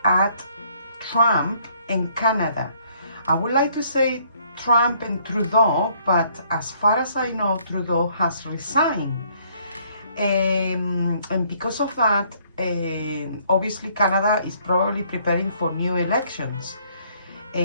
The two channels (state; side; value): inverted; both; correlation -0.65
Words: at Trump and Canada. I would like to say Trump and Trudeau, but as far as I know, Trudeau has resigned. And because of that, obviously Canada is probably preparing for new elections.